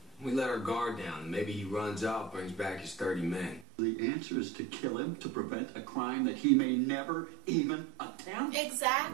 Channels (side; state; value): left; drops out; at 3.7 s